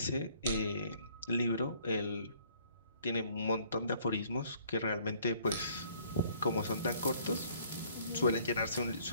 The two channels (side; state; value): both; inverted; correlation -0.60